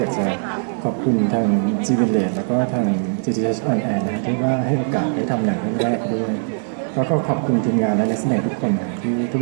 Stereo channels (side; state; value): left; silent; digital silence